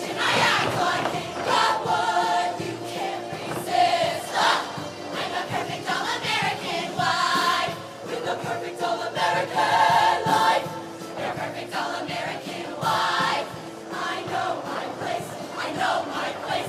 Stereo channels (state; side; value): identical; both; correlation 1.00